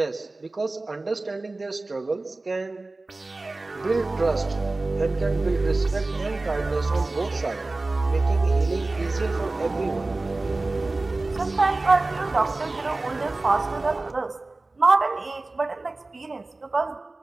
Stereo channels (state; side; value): quieter; left; 3.2 dB